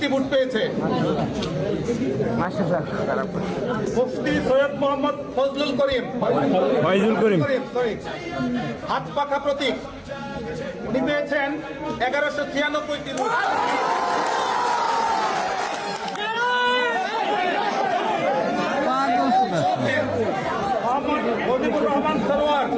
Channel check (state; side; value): identical; both; correlation 1.00